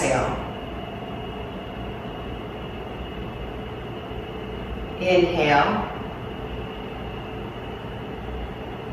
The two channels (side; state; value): both; identical; correlation 1.00